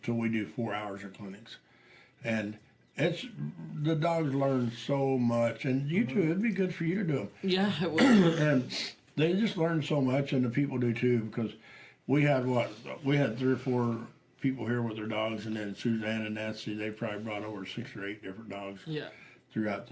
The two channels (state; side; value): identical; both; correlation 1.00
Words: till we do 4 hours of clinics. And the dogs learn so much, and you too, it'd be good for you to do them. Yeah, it was. And they just learn so much, and the people do too, because we had 3 or 4 people here with their dogs, and then Suzanne and Nancy, they probably brought over 6 or 8 different dogs throughout the